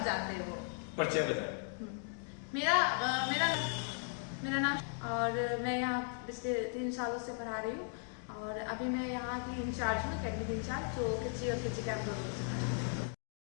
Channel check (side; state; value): right; silent; 53 dB below the other